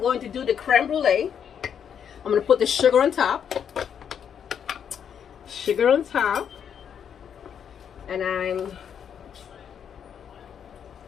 to do the creme brulee. I'm going to put the sugar on top. Sugar on top. And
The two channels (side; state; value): right; quieter; 8.1 dB